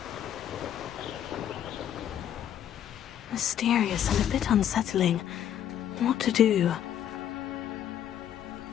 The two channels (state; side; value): quieter; right; 10.2 dB